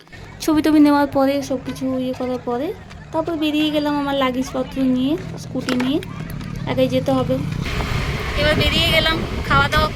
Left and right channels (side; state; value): both; identical; correlation 1.00